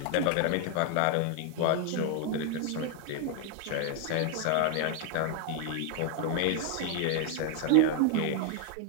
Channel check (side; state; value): both; different; correlation 0.01